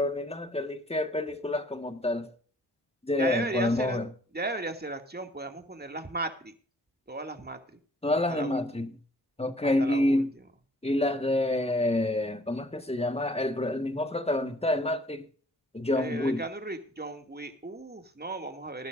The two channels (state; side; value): normal; both; correlation 0.59